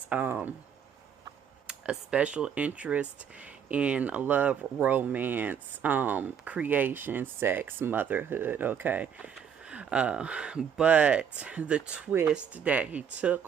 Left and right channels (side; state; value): left; quieter; 7.8 dB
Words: a special interest in love, romance, creation, sex, motherhood, okay? But the twist that he